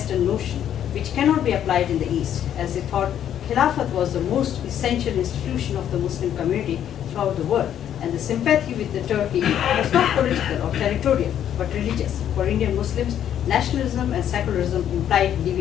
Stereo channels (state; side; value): quieter; right; 10.1 dB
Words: notion which cannot be applied in the East, as they thought Khilafat was the most essential institution of the Muslim community throughout the world, and the sympathy with the Turkey was not political or territorial, but religious. For Indian Muslims, nationalism and secularism implied